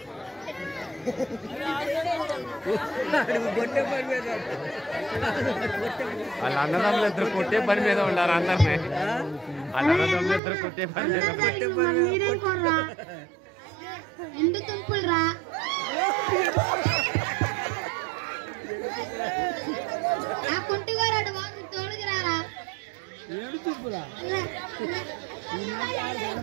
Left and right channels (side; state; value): left; drops out; at 10.4 s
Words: వాళ్ళ అన్నదమ్ములు ఇద్దరు కొట్టే పని మీద ఉండారు అందరినీ. వాళ్ళ అన్నదమ్ములు ఇద్దరు కొట్టే పని మీద మీరేం కోర్రా ఎండు తుంపులు రా ఆ కుంటిగారాడు బాగు తోడుకు రారా